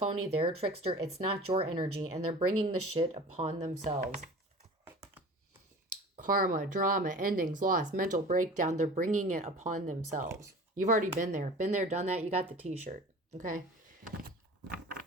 They're a trickster. It's not your energy. And they're bringing the shit upon themselves. Karma, drama, endings, loss, mental breakdown. They're bringing it upon themselves. You've already been there. Been there, done that. You got the t-shirt. Okay?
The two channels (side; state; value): both; normal; correlation 0.40